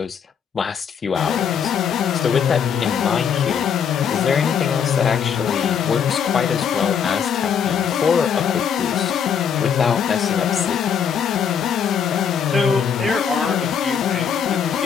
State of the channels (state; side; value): quieter; right; 7.4 dB